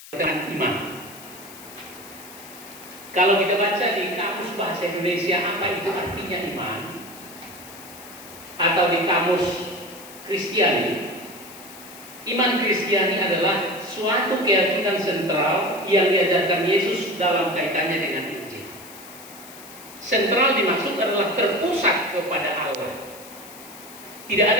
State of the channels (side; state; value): left; noise; hiss, 17 dB below the sound